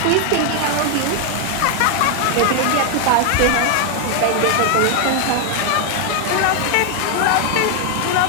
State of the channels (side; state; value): both; different; correlation 0.00